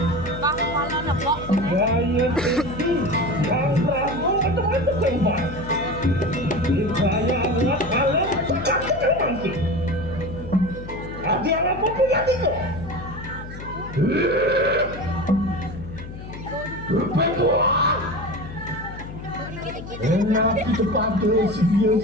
Gaya tinggi yang ramu atau kembar. Gaya alat alam cakap mangki. Ada apa pun yang itu. Berpeluang. Enak kita pakai sedia.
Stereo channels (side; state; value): left; noise; hum, 12 dB below the sound